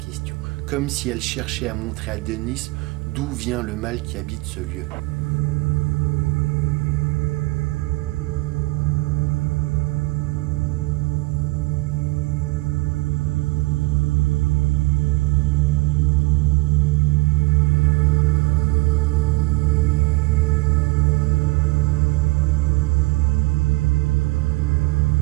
comme si elle cherchait à montrer à Denis d'où vient le mal qui habite ce lieu.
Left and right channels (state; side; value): quieter; left; 22.8 dB